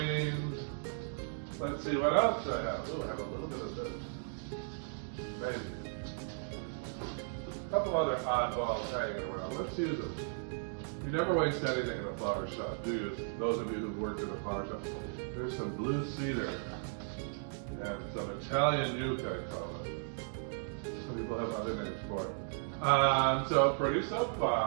Let's see what else I have. Oh, I have a little bit of this. Maybe. A couple other oddballs hanging around. Let's use them. You never waste anything in a flower shop, do you? Those of you who've worked in a flower shop. There's some blue cedar and some Italian yucca, I call it. Some people have other names for it. So pretty so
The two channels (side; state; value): left; silent; digital silence